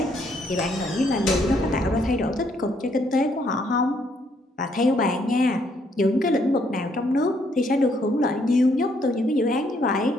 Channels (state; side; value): normal; both; correlation 0.70